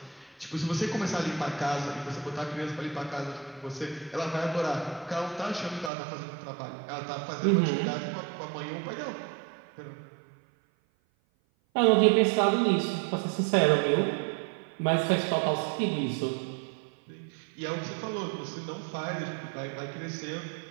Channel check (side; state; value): left; drops out; at 5.9 s